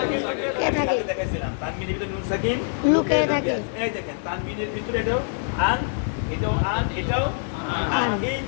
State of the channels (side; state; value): right; silent; 62 dB below the other